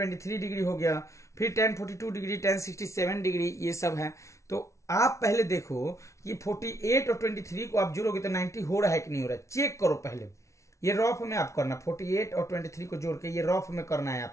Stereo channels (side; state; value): right; late; 0.14 ms